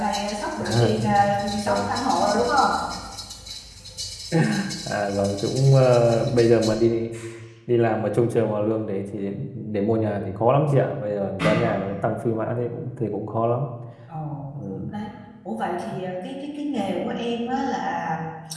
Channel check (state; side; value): identical; both; correlation 1.00